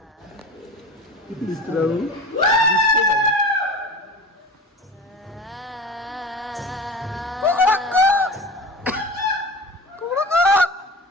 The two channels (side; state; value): both; normal; correlation 0.34